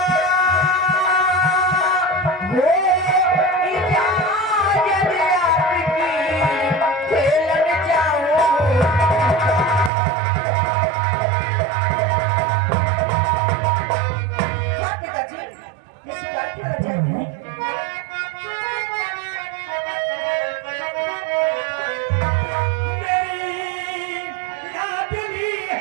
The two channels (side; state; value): left; drops out; at 9.9 s